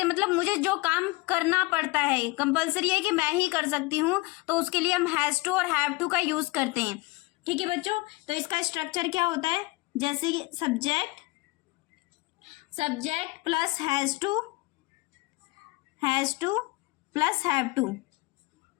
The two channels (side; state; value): right; quieter; 23.5 dB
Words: मतलब मुझे जो काम करना पड़ता है, कंपलसरी है कि मैं ही कर सकती हूँ, तो उसके लिए हम हैज़ टू और हैव टू का यूज़ करते हैं। ठीक है बच्चों, तो इसका स्ट्रक्चर क्या होता है? जैसे कि subject plus has to plus have to,